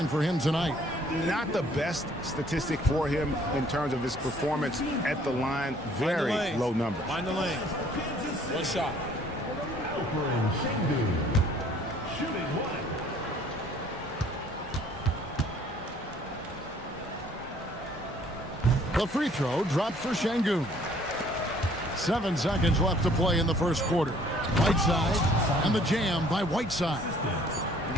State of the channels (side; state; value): both; normal; correlation 0.58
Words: for him tonight. Not the best statistic for him in terms of his performance at the line. Very low number. Find the lane. 1 shot. The free throw dropped for Şengün. 7 seconds left to play in the first quarter. Whiteside and the jam by Whiteside.